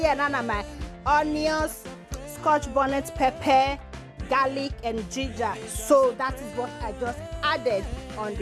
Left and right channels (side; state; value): both; identical; correlation 1.00